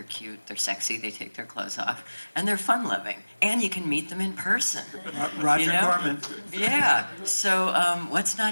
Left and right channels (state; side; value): inverted; both; correlation -1.00